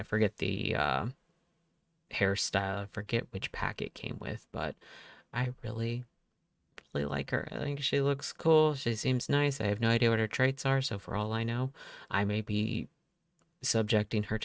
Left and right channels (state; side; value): identical; both; correlation 1.00